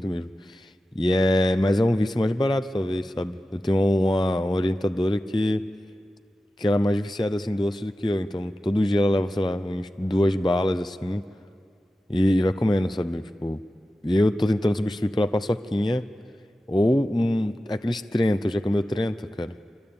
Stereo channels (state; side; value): normal; both; correlation 0.93